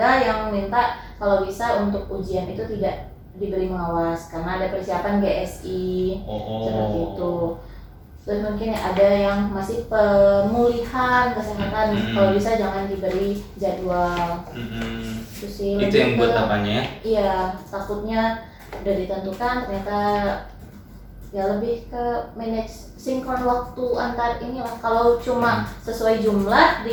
yang minta kalau bisa untuk ujian itu tidak diberi pengawas karena ada persiapan GSI seperti itu. Terus mungkin ada yang masih pemulihan kesehatan, kalau bisa jangan diberi jadwal. Itu sih. Itu yang buat apanya ya? Iya, takutnya udah ditentukan ternyata ya lebih ke manage sinkron waktu antar inilah. Kalau cuma sesuai jumlah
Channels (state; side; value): identical; both; correlation 1.00